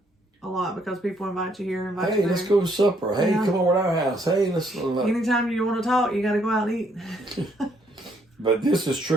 a lot because people invite you here, invite you there. Hey, let's go to supper. Hey, come over to our house. Hey, let's... Anytime you want to talk, you got to go out and eat. But this is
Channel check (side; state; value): both; normal; correlation 0.69